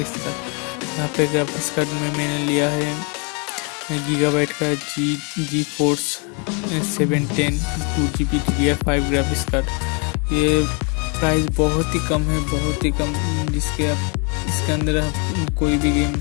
कार्ड। यहाँ पे ग्राफिक्स कार्ड में मैंने लिया है गीगाबाइट का GeForce 710 2GB DDR5 graphics card. ये प्राइस बहुत ही कम है, बहुत ही कम, जिसके आप इसके अंदर आप कोई भी गेम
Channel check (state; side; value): quieter; right; 34.9 dB